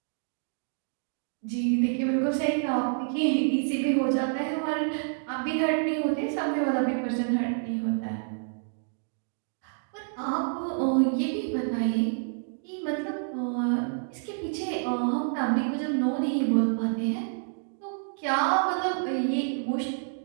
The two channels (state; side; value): silent; left; digital silence